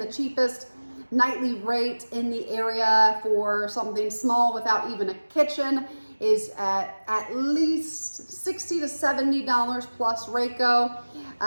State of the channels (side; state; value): both; inverted; correlation -1.00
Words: the cheapest nightly rate in the area for something small without even a kitchen is at least $60 to $70 plus RACO,